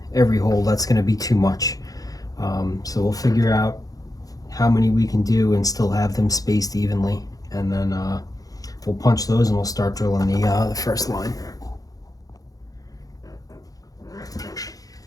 hole, that's going to be too much. So we'll figure out how many we can do and still have them spaced evenly, and then we'll punch those and we'll start drilling the first line.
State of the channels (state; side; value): late; right; 0.17 ms